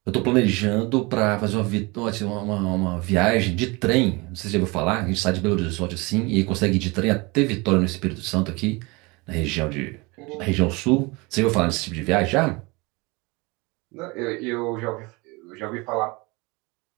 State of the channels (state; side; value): quieter; left; 25.9 dB